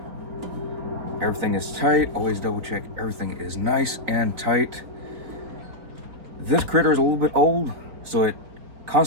Everything is tight. Always double check everything is nice and tight. This critter is a little bit old, so it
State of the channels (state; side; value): late; left; 3.9 ms